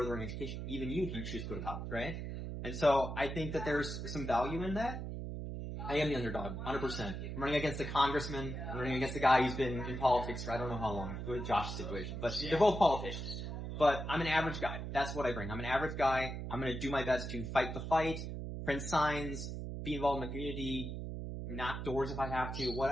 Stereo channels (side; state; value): right; noise; hum, 5 dB below the sound